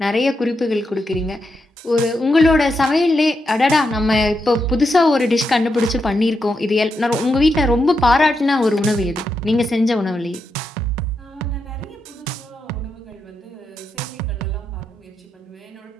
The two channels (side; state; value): both; normal; correlation 0.85